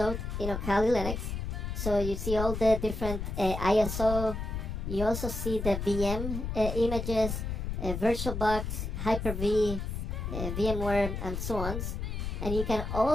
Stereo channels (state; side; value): noise; left; rumble, 4 dB below the sound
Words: Kali Linux. So you see all the different ISO. You also see the VM images, VirtualBox, Hyper-V, VMware, and so on. And you can